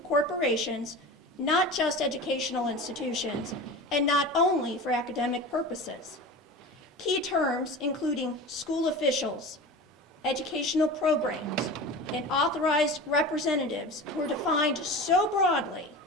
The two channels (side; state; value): both; normal; correlation 0.32